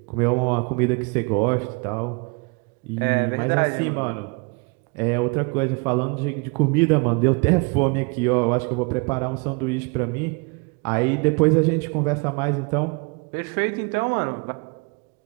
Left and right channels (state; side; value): quieter; left; 31.9 dB